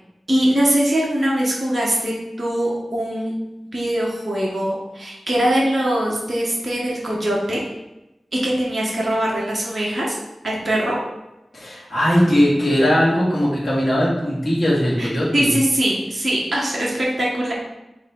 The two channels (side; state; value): both; normal; correlation 0.95